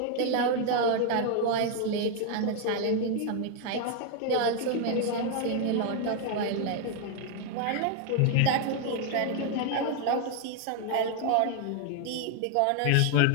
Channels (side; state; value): both; different; correlation 0.00